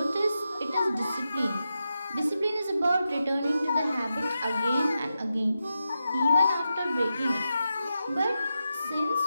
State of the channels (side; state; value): both; inverted; correlation -0.89